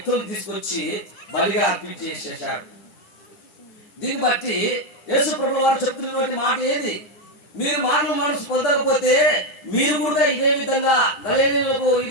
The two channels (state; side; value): late; right; 9.9 ms